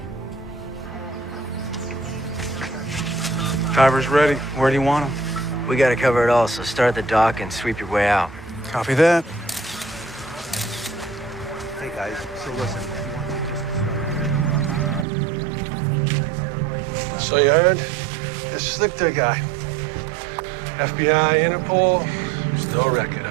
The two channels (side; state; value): left; drops out; at 15.1 s